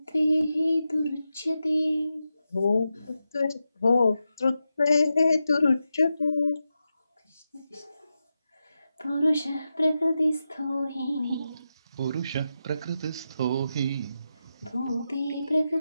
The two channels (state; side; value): inverted; both; correlation -0.89